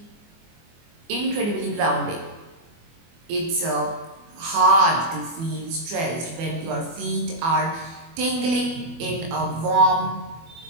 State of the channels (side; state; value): left; late; 24 ms